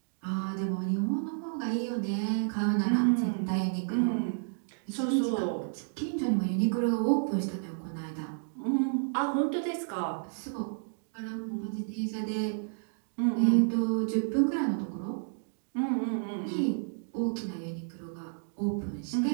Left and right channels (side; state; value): left; silent; digital silence